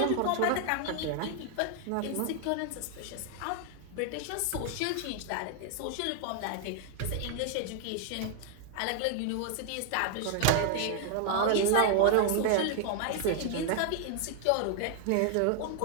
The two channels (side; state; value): both; different; correlation 0.00